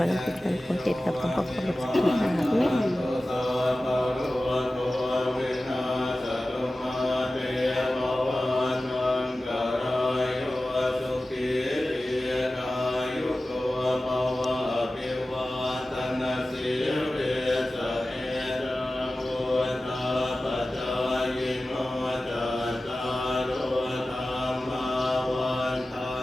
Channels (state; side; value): normal; both; correlation 0.96